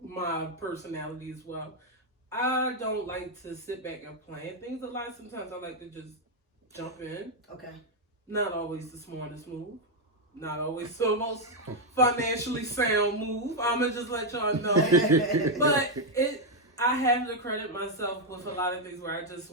my personality as well, I don't like to sit back and plan things a lot. Sometimes I like to just jump in. Okay. Not always the smartest move. Not always the most financially sound move. I'm going to just let y'all know. But I have to credit myself with a lot of things where I just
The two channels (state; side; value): normal; both; correlation 0.01